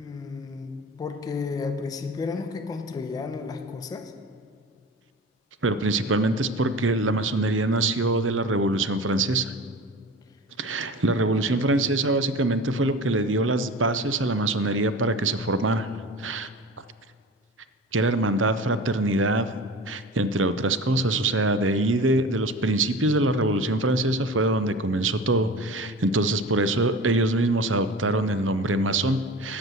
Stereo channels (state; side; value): normal; both; correlation 0.35